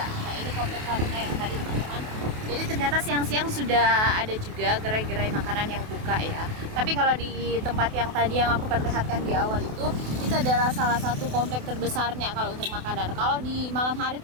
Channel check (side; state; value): left; late; 28 ms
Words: Nah, ini komplek Haruna yang tadi teman-teman. Jadi ternyata siang-siang sudah ada juga gerai-gerai makanan yang buka ya. Tapi kalau di tempat yang tadi yang aku perlihatkan di awal itu adalah salah satu komplek terbesarnya kalau untuk makanan. Kalau di malam hari